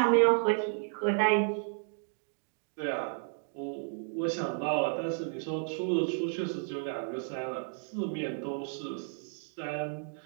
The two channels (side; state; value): left; silent; 56 dB below the other